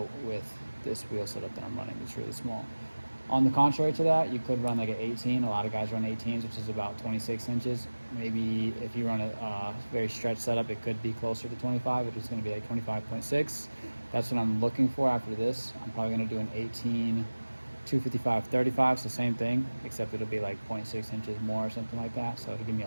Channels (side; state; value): both; inverted; correlation -1.00